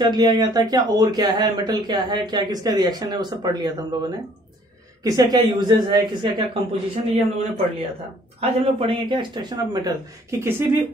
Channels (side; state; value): both; normal; correlation 0.58